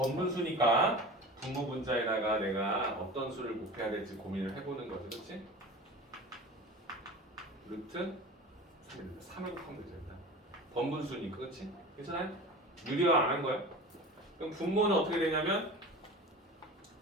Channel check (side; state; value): both; normal; correlation 0.35